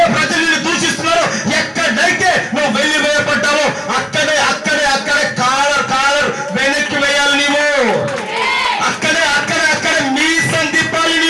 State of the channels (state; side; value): identical; both; correlation 1.00